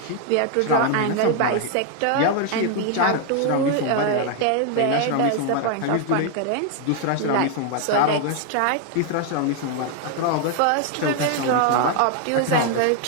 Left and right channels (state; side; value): different; both; correlation 0.00